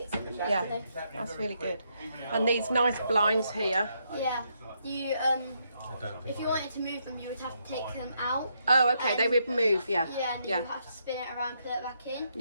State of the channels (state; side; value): inverted; both; correlation -0.77